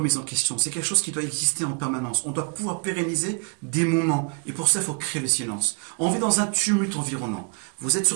en question. C'est quelque chose qui doit exister en permanence. On doit pouvoir pérenniser des moments. Et pour ça, il faut créer le silence. On vit dans un tumulte environnant. Vous êtes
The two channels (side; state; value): left; quieter; 39.3 dB